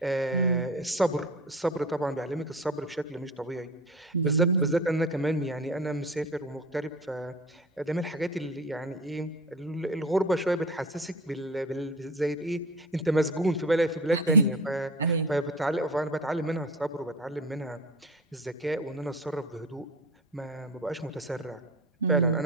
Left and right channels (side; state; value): both; normal; correlation 0.34